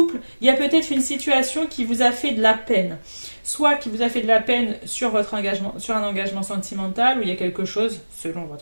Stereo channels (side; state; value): both; inverted; correlation -1.00